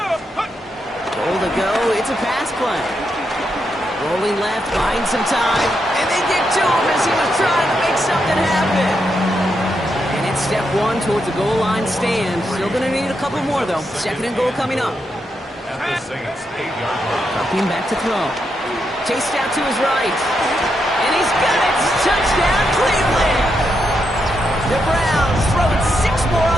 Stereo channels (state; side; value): normal; both; correlation 0.82